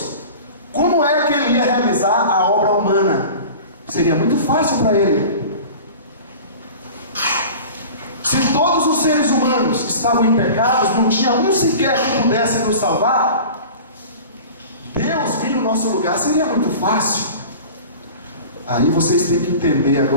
como é que ele ia realizar a obra humana? Seria muito fácil para ele. Se todos os seres humanos estavam em pecados, não tinha um sequer que pudesse nos salvar, Deus vir no nosso lugar seria muito fácil. Aí vocês têm que entender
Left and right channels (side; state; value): both; inverted; correlation -0.38